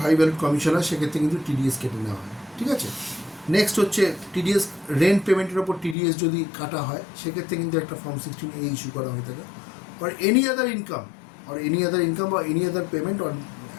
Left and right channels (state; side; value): drops out; right; at 6.0 s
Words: হাই ভ্যালুড কমিশন হয় সেক্ষেত্রে কিন্তু টিডিএস কেটে নেওয়া হয়। ঠিক আছে, নেক্সট হচ্ছে টিডিএস রেন্ট পেমেন্টের ওপর টিডিএস যদি কাটা হয় সেক্ষেত্রে কিন্তু একটা ফর্ম 16A ইস্যু করা হয়ে থাকে। আর এনি আদার ইনকাম বা এনি আদার পেমেন্ট,